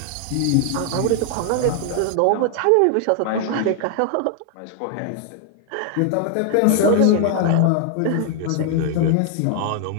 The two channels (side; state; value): both; different; correlation 0.00